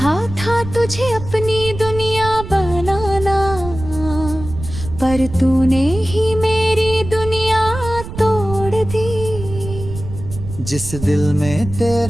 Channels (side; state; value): right; noise; rumble, 10 dB below the sound